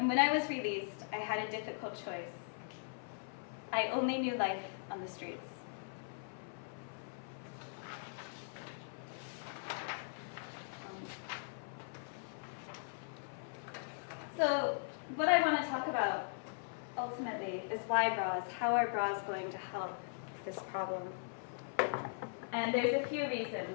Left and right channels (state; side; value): silent; right; 51 dB below the other